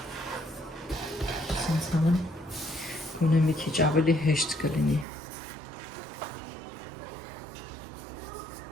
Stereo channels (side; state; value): left; drops out; at 5.1 s